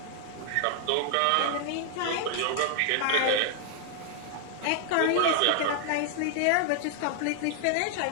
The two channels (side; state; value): both; different; correlation 0.00